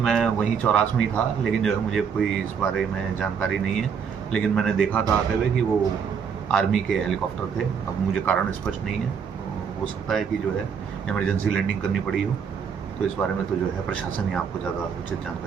वहीं चौरास में ही था, लेकिन जो है मुझे कोई इस बारे में जानकारी नहीं है। लेकिन मैंने देखा था आते हुए कि वो आर्मी के हेलीकॉप्टर थे। अब मुझे कारण स्पष्ट नहीं है, हो सकता है कि जो है इमरजेंसी लैंडिंग करनी पड़ी हो, तो इस बारे में तो जो है प्रशासन ही आपको ज़्यादा उचित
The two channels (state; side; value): quieter; left; 6.8 dB